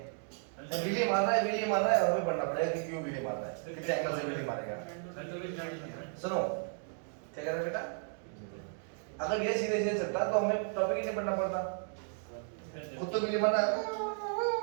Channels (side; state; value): left; silent; 55 dB below the other